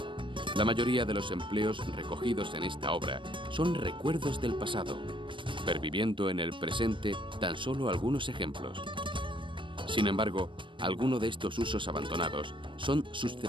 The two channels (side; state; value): left; late; 0.24 ms